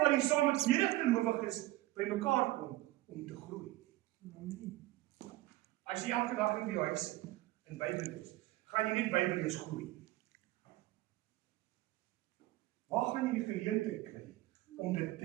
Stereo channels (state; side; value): quieter; left; 17.6 dB